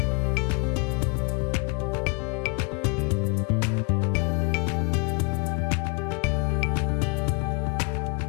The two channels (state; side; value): quieter; right; 32.5 dB